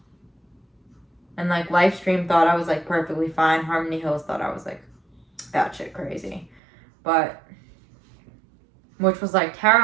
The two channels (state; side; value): drops out; left; at 6.6 s